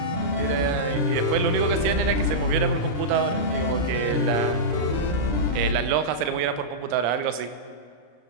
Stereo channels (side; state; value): left; late; 34 ms